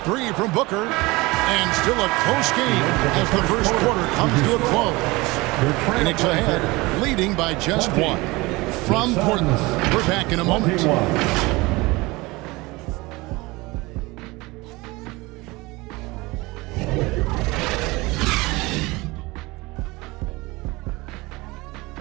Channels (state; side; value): quieter; left; 22.5 dB